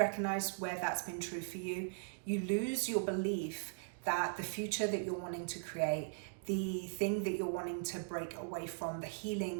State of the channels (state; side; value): silent; left; digital silence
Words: where that's been true for you? You lose your belief that the future that you're wanting to create, the thing that you're wanting to break away from, the